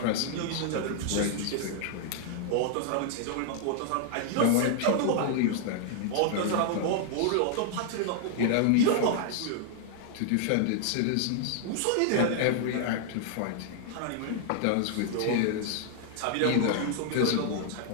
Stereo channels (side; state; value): both; different; correlation -0.01